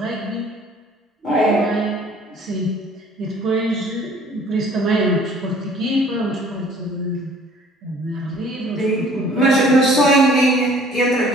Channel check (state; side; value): normal; both; correlation 0.54